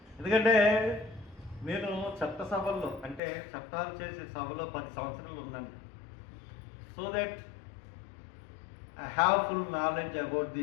ఎందుకంటే నేను చట్టసభల్లో అంటే చట్టాలు చేసే సభలో 10 సంవత్సరాలు ఉన్నాను. So that I have full knowledge about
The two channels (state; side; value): drops out; right; at 3.2 s